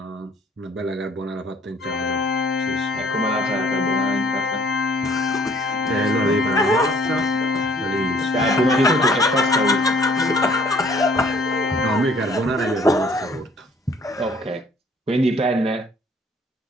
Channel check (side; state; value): both; normal; correlation 0.59